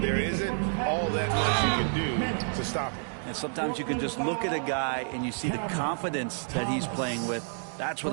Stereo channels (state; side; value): silent; left; 58 dB below the other